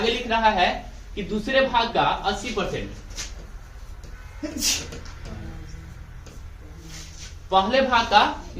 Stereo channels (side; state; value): both; identical; correlation 1.00